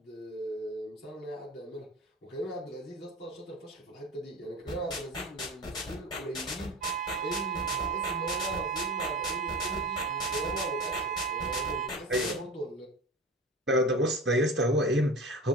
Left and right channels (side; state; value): both; normal; correlation 0.31